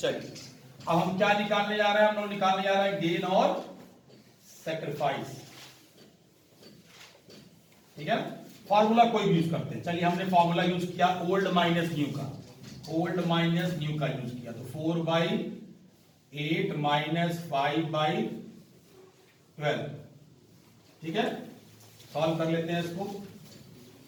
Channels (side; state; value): both; identical; correlation 1.00